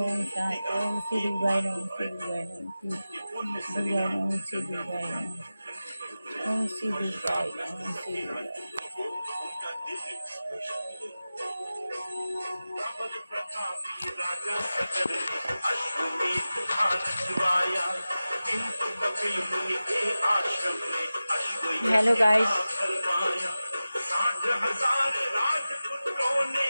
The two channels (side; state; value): both; inverted; correlation -0.95